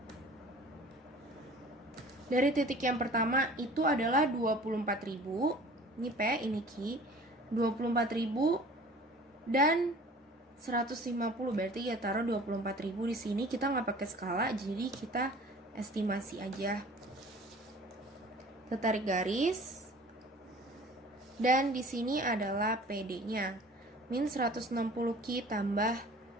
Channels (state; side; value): normal; both; correlation 0.46